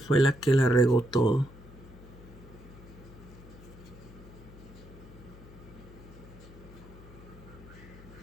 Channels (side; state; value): left; noise; hum, 18 dB below the sound